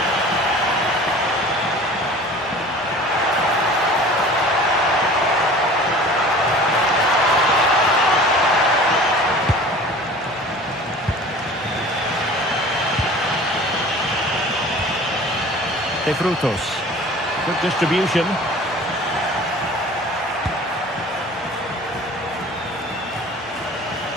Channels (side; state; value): both; normal; correlation 0.43